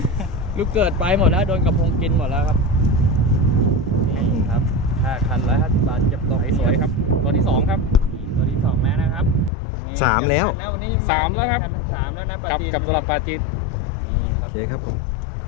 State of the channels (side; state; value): right; drops out; at 9.5 s